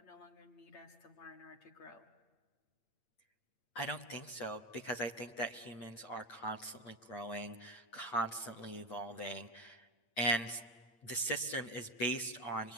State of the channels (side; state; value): right; late; 8.7 ms